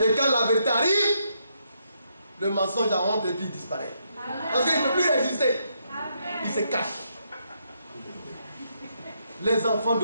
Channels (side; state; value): both; inverted; correlation -0.77